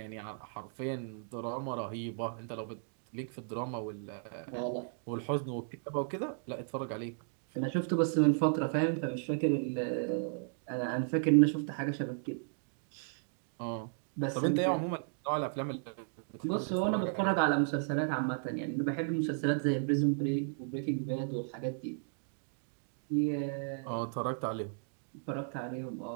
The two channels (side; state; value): left; silent; digital silence